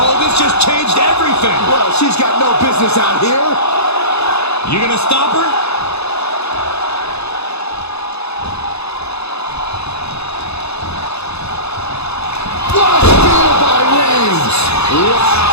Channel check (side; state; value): right; late; 0.79 ms